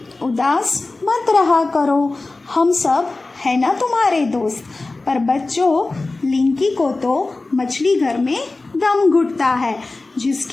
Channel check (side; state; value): right; quieter; 3.3 dB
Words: उदास मत रहा करो, हम सब है ना तुम्हारे दोस्त। पर बच्चों, लिंकी को तो मछली घर में दम घुटता है,